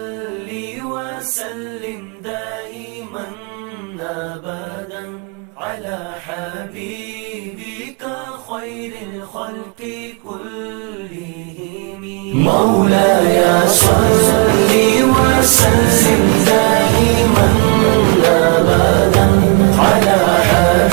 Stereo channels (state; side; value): quieter; left; 30.6 dB